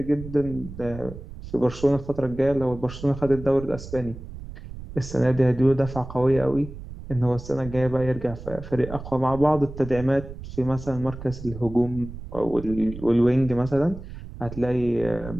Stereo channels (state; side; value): noise; right; rumble, 12 dB below the sound